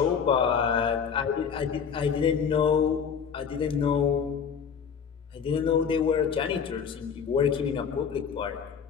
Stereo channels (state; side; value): quieter; right; 6.8 dB